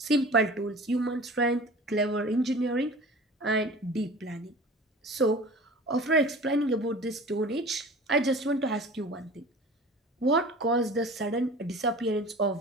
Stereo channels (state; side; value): normal; both; correlation 0.40